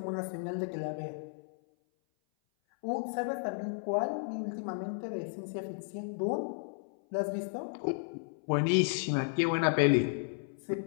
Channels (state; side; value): silent; right; 55 dB below the other